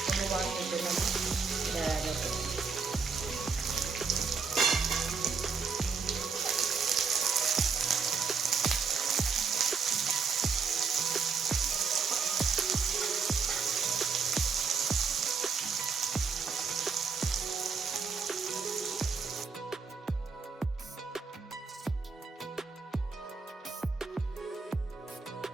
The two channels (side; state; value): left; quieter; 5.4 dB